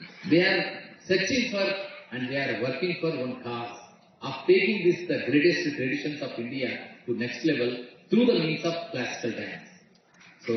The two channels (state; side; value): identical; both; correlation 1.00